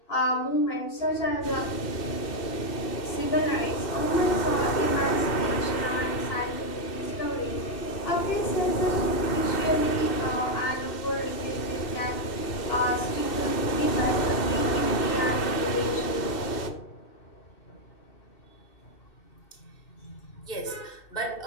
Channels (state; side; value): late; right; 2.7 ms